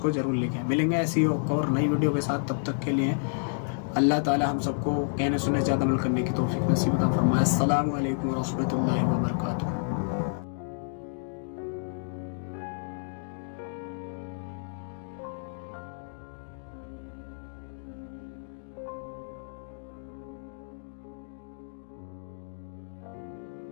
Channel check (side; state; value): right; silent; digital silence